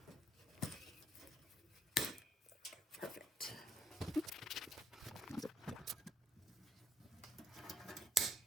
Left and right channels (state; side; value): normal; both; correlation 0.65